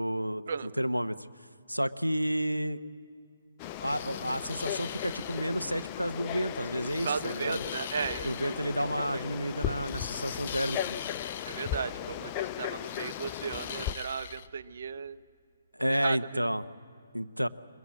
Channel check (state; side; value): inverted; both; correlation -0.80